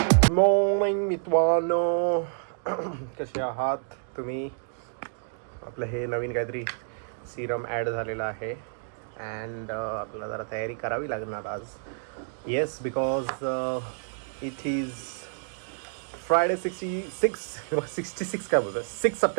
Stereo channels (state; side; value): silent; left; digital silence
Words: मॉर्निंग मित्रांनो, कसे आहात तुम्ही? आपलं हे नवीन काहीतरी सिरम ॲड झालेलं आहे अँड आपल्याला जरा तयारी करावी लागणार आज. Yes, because it is Friday 66 काय बोलतो 6